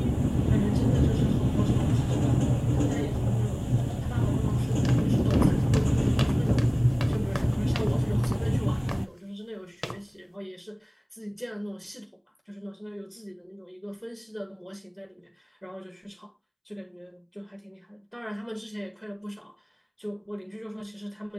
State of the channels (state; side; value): identical; both; correlation 1.00